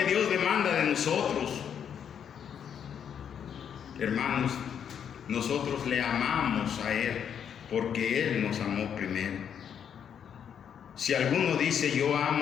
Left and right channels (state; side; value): quieter; right; 8.2 dB